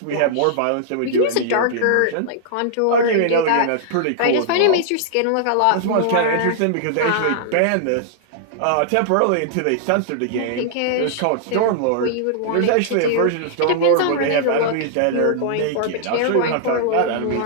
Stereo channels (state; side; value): different; both; correlation -0.01